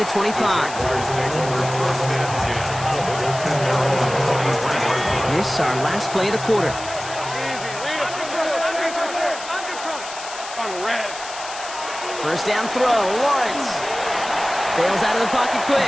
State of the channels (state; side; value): noise; left; hiss, 12 dB below the sound